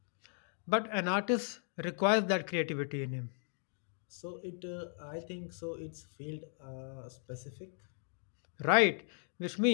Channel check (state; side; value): silent; right; 53 dB below the other